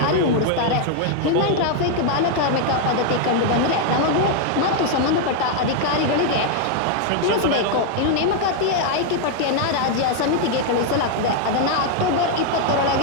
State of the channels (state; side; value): different; both; correlation 0.00